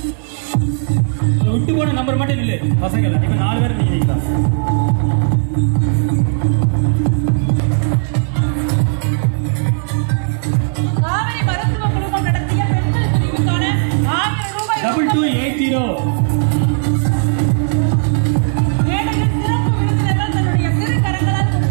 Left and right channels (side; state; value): left; silent; digital silence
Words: விட்டு போன நம்பர் மட்டும் இல்லை பசங்க இப்ப 4 பேர் நிக்கிறீங்களா? காவிரி மருத்துவ குழுமம் நடத்திய பெண்கள் பிரிவுக்கான 1000 ரூபாய் 2280 மேடையில் சிறப்பு விருந்தினர்கள் தன்னுடைய திருக்கரங்களால்